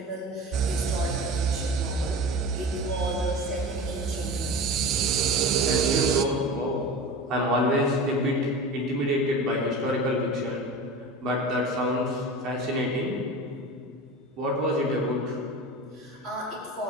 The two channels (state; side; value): normal; both; correlation 0.32